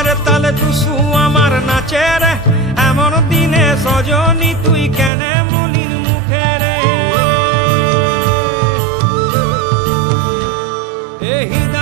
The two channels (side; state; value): left; drops out; at 5.1 s